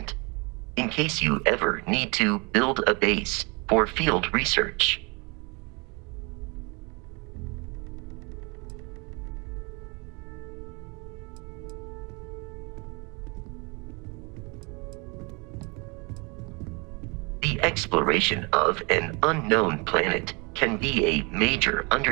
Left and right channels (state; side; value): quieter; left; 29.8 dB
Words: in case you ever need to build a base for field research. The exploration of an unknown planet can be a major